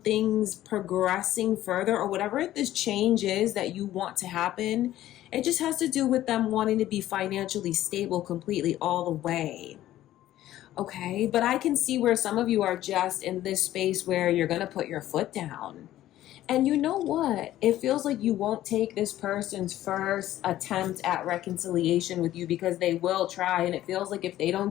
progressing further, or whatever this change is that you want to happen, it just has to do with them wanting to be financially stable completely all the way. Okay, but I can see where some of you are just in this space where you're going to put your foot down. And you know what? It feels like you won't take this person's first attempt at reconciliation with you, because they will try. And it feels like if they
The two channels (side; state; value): right; quieter; 13.8 dB